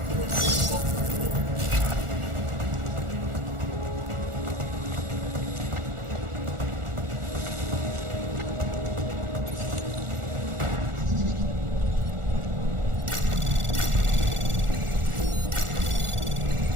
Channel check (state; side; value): late; left; 1.4 ms